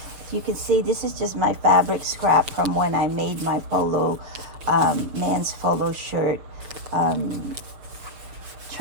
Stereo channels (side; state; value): left; late; 6.8 ms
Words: You can see this is just my fabric scrap from when I made my polo, man's polo shirt